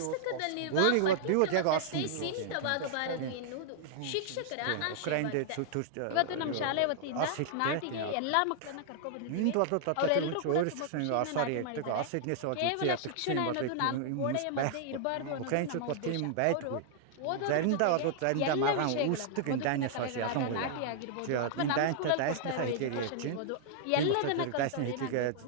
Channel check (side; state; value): both; different; correlation -0.01